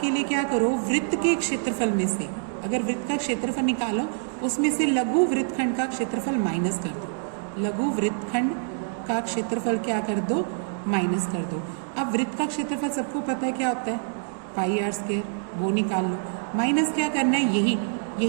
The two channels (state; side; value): silent; left; digital silence